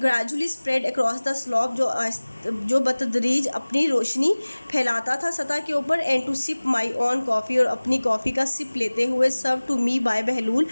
spread across the slope, जो बतदरीज अपनी रोशनी फैलाता था सतह के ऊपर। And to sip my own coffee, और अपनी कॉफ़ी का सिप लेते हुए। सर्व टू मी बाय बहलूल,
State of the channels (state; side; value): inverted; both; correlation -1.00